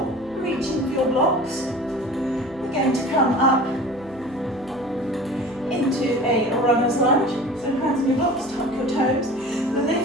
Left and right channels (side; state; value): left; noise; hum, 22 dB below the sound